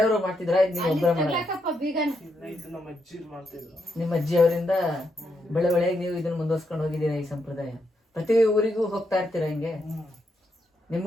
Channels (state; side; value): normal; both; correlation 0.80